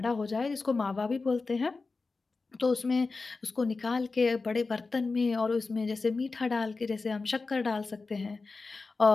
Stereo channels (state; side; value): quieter; right; 4.0 dB